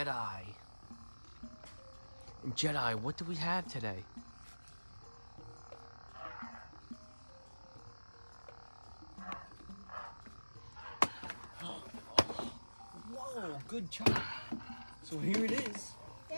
And Jedi, what do we have today? Whoa, good job. So here it is.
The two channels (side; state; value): both; inverted; correlation -1.00